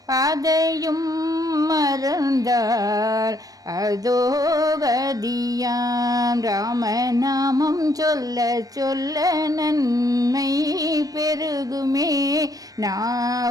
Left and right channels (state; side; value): late; left; 0.18 ms